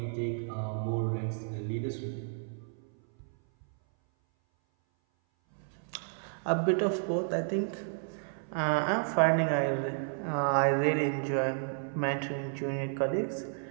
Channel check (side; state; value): left; silent; 57 dB below the other